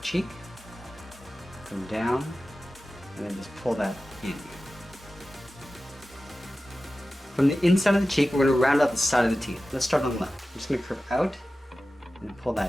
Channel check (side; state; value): both; normal; correlation 0.95